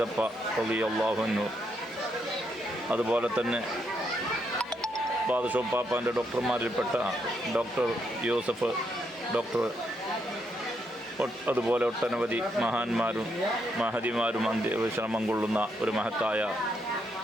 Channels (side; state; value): both; normal; correlation 0.78